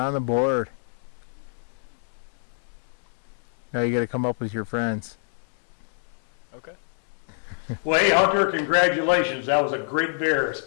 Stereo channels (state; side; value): silent; right; digital silence